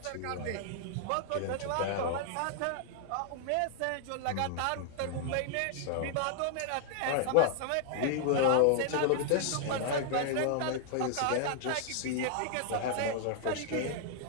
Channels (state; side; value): different; both; correlation -0.01